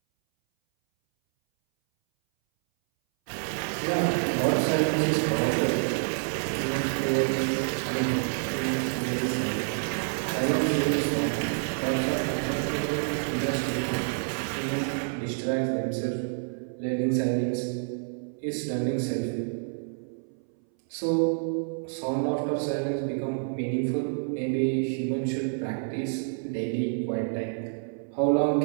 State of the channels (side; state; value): left; silent; 59 dB below the other